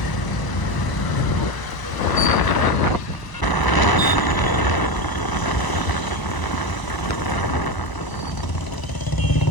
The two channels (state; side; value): late; right; 1.0 ms